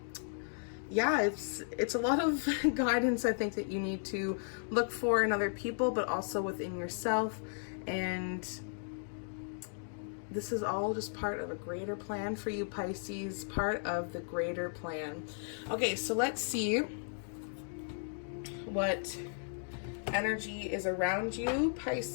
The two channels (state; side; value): silent; right; digital silence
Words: yeah, it's a lot of guidance, I think, that you need to look for in other people, but also within yourself. And this is all just part of a greater plan for you, Pisces, part of the greater plan. Okay, so let's see what energy is around you,